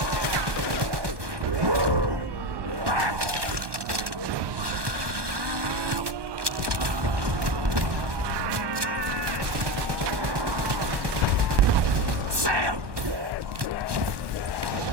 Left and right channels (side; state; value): left; late; 1.2 ms